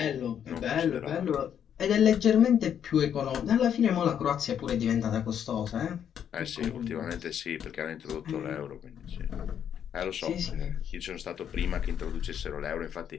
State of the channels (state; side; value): quieter; right; 8.9 dB